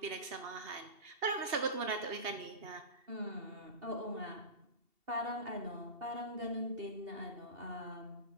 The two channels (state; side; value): late; left; 2.7 ms